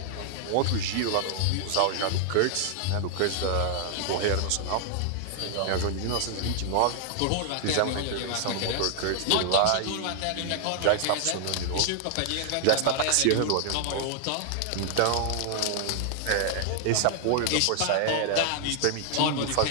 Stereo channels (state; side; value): different; both; correlation 0.00